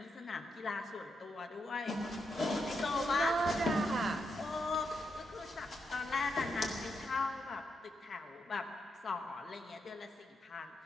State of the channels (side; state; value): both; normal; correlation 0.83